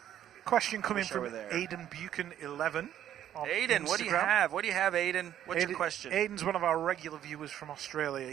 question coming from Aiden Buchan 11. Aiden, what do you have? What do you have, Aiden? What's your question? Aiden's one of our regular viewers from Australia.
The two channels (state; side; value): quieter; left; 11.0 dB